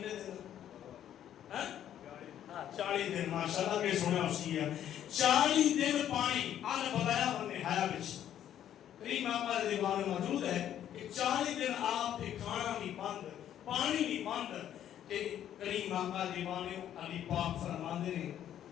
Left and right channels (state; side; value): quieter; right; 10.7 dB